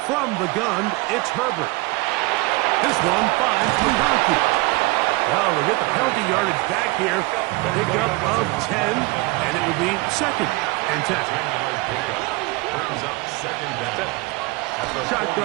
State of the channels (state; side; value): quieter; left; 23.8 dB